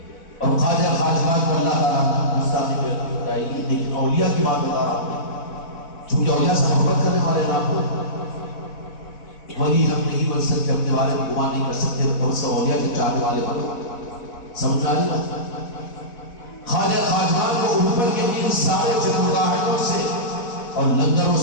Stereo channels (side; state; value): right; late; 4.1 ms